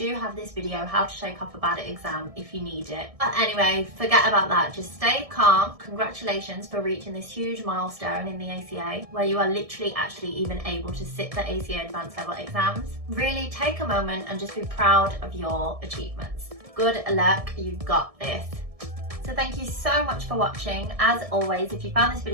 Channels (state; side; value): late; left; 1.6 ms